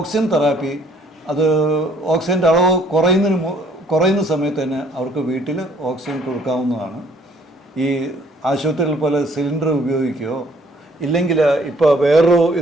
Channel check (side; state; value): both; normal; correlation 0.61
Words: തെറാപ്പി, അത് ഓക്സിജൻ്റെ അളവ് കുറയുന്ന സമയത്ത് തന്നെ അവർക്ക് വീട്ടിൽ ഓക്സിജൻ കൊടുക്കാവുന്നതാണ്. ഈ ആശുപത്രികൾ പോലെ സിലിണ്ടർ ഉപയോഗിക്കുകയോ ഇല്ലെങ്കിൽ ഇപ്പോൾ വേറൊരു